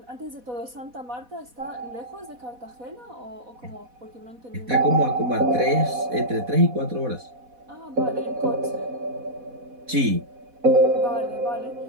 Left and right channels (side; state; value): left; late; 4.1 ms